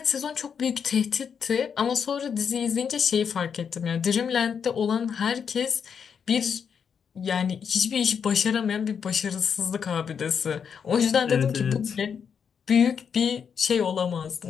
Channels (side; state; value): right; quieter; 7.0 dB